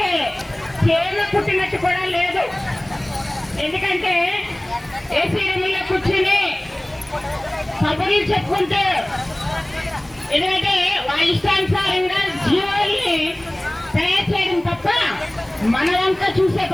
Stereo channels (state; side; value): noise; right; hiss, 28 dB below the sound